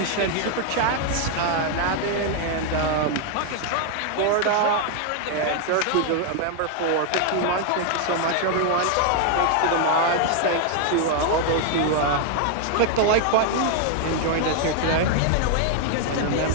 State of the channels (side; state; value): both; different; correlation 0.00